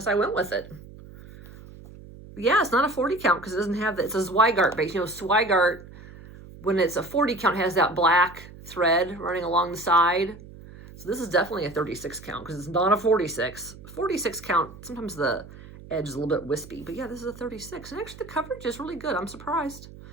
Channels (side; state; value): right; noise; hum, 18 dB below the sound